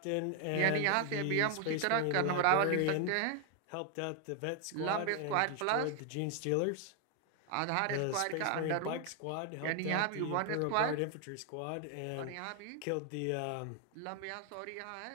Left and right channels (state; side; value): different; both; correlation 0.00